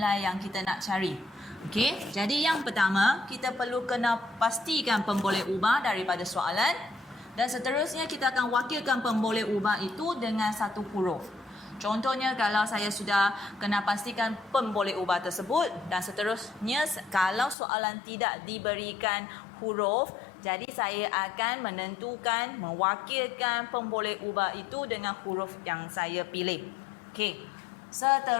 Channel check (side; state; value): right; drops out; at 17.6 s